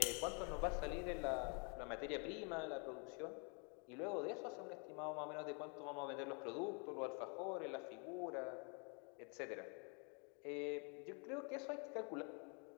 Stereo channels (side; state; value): right; quieter; 36.3 dB